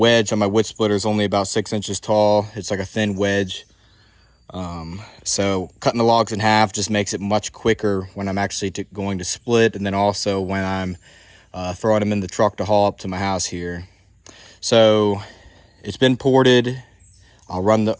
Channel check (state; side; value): identical; both; correlation 1.00